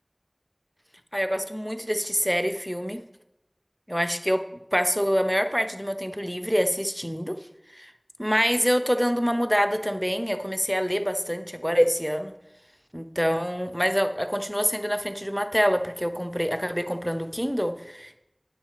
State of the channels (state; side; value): identical; both; correlation 1.00